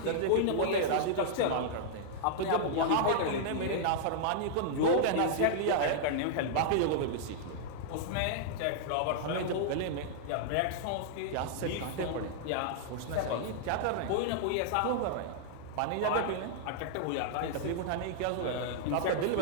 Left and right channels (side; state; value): both; different; correlation -0.01